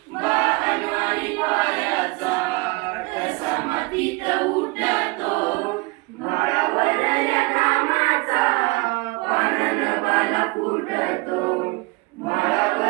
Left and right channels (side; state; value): left; quieter; 25.5 dB